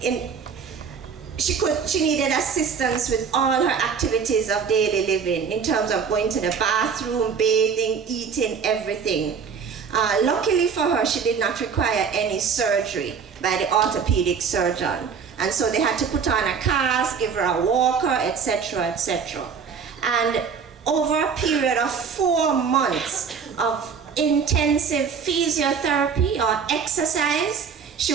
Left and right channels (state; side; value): quieter; left; 6.3 dB